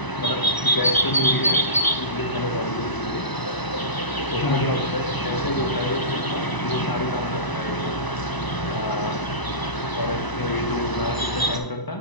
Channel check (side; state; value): right; late; 1.0 ms